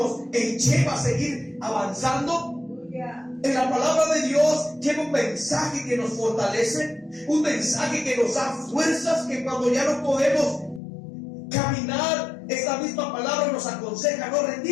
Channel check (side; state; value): right; drops out; at 10.8 s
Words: lleva a seguir avanzando. Aleluya. En la palabra de Dios lleva un mensaje que nos fortalece, un mensaje que nos da fuerzas, que cuando ya no podemos caminar, esta misma palabra nos aconseja no